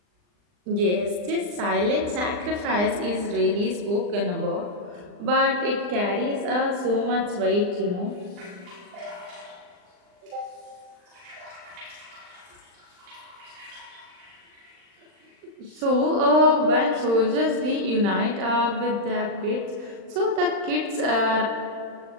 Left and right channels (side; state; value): left; late; 39 ms